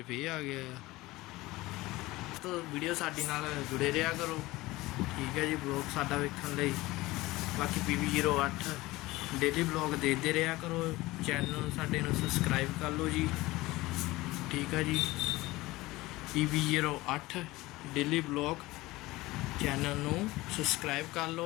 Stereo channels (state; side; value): quieter; right; 19.6 dB